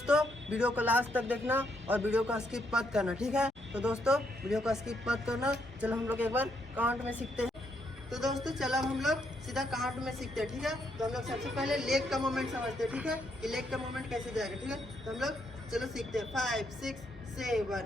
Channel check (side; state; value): both; normal; correlation 0.76